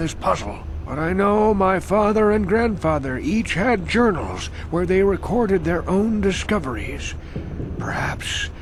puzzle. But I know my father and grandfather each had journals where they recorded their own discoveries. Perhaps,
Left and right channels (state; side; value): identical; both; correlation 1.00